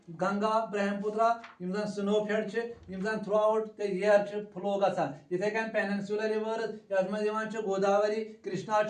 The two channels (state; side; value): identical; both; correlation 1.00